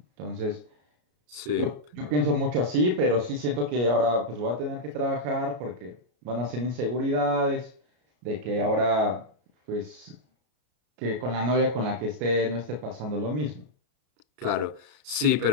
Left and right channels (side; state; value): left; late; 33 ms